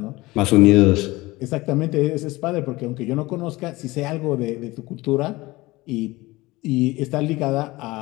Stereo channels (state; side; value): quieter; right; 20.5 dB